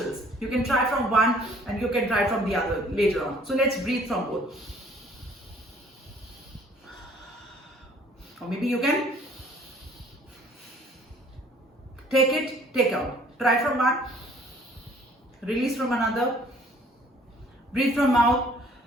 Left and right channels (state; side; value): normal; both; correlation 0.57